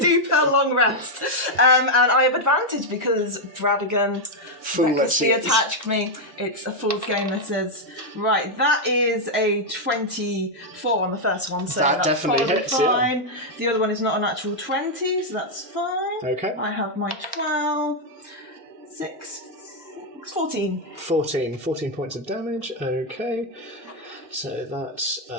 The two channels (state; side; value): normal; both; correlation -0.01